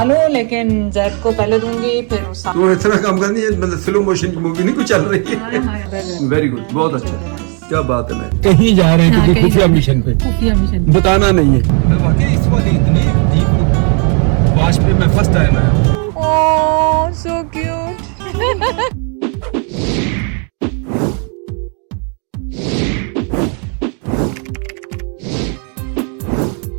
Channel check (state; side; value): quieter; left; 38.4 dB